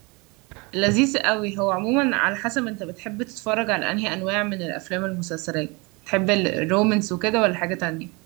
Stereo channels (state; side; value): quieter; left; 27.7 dB